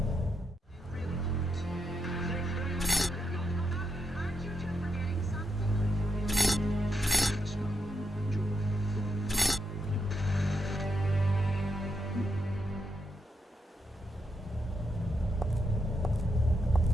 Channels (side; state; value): both; normal; correlation 0.83